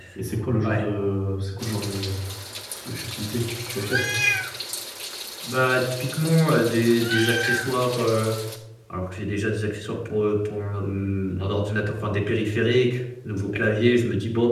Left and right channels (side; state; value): both; identical; correlation 1.00